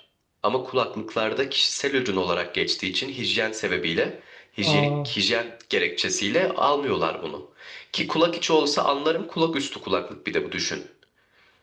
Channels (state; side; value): identical; both; correlation 1.00